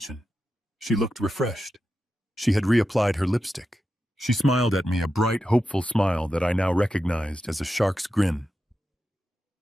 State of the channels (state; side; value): normal; both; correlation 0.90